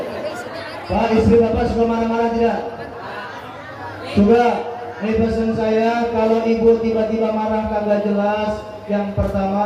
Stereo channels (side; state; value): both; identical; correlation 1.00